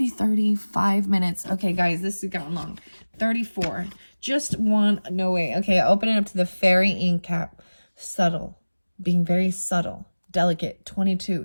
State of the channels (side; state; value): both; inverted; correlation -1.00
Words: 35 minutes. Okay, guys, this has gotten long. 34. Just one. No way. Okay, open it up to the fairy ink cap. Subtle. Being very subtle. Delicate. 22.